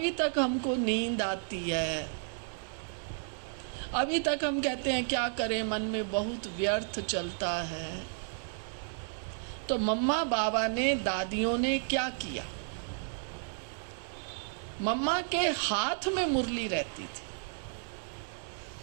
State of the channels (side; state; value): left; silent; digital silence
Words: तक हमको नींद आती है, अभी तक हम कहते हैं क्या करें, मन में बहुत व्यर्थ चलता है। तो मम्मा बाबा ने, दादियों ने क्या किया? मम्मा के हाथ में मुरली रहती थी।